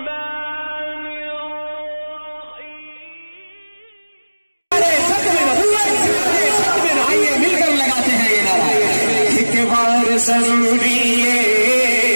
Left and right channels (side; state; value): both; inverted; correlation -1.00